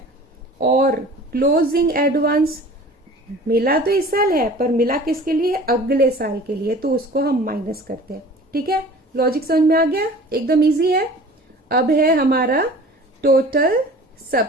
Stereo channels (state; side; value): normal; both; correlation 0.44